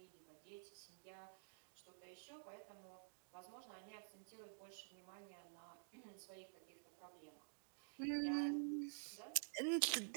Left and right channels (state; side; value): silent; left; digital silence